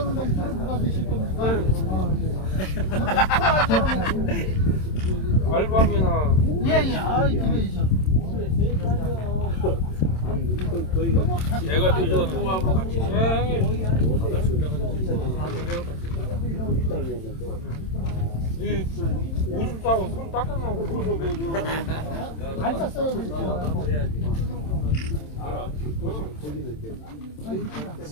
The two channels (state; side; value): late; right; 27 ms